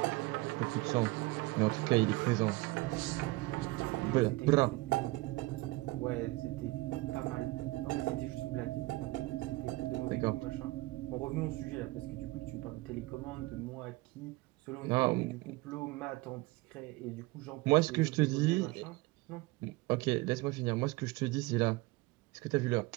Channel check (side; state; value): left; quieter; 21.9 dB